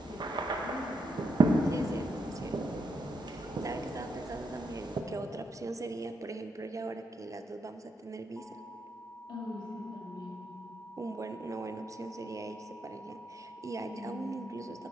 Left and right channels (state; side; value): normal; both; correlation 0.80